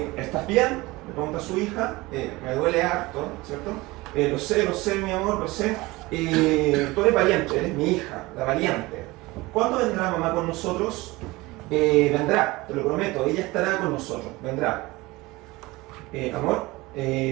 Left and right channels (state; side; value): quieter; left; 21.2 dB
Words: bien? Le pregunta a su hija, me duele harto, ¿cierto? Lo sé, mi amor, lo sé. Tú eres valiente, eres mi hija, la valiente. ¿Cuándo vendrá mamá con nosotros? Vendrá, te lo prometo, ella estará con nosotros, vendrá. Amor,